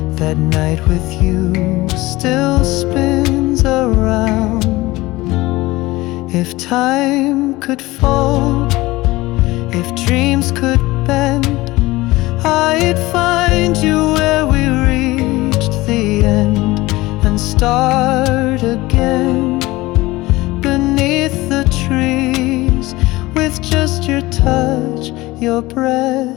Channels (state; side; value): quieter; right; 19.7 dB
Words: that night with you still spins around. If time could fold, if dreams could bend, I'd find you where we reached the end and start again beneath the trees, with just your touch, your